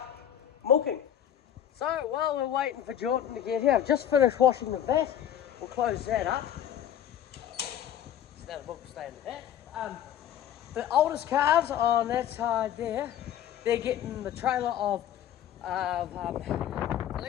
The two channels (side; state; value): right; quieter; 10.4 dB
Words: milking. So while we're waiting for Jordan to get here, I've just finished washing the vat. We'll close that up. So now the milk will stay in the vat. The oldest calves on that side there, they're getting the trailer of